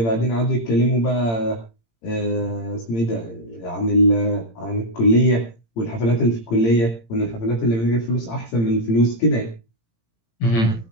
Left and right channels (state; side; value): late; right; 18 ms